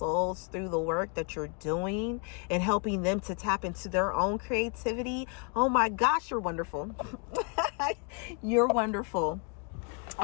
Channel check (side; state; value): right; quieter; 36.3 dB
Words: through the work that you're doing and helping them to tap into their own creativity. Oh my gosh, you're wonderful. You're wonderful. All